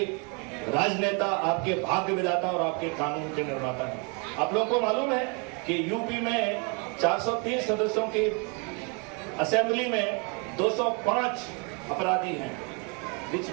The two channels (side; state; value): left; quieter; 33.9 dB